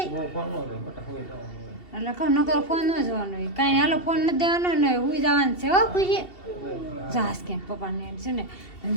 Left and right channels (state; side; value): late; right; 2.7 ms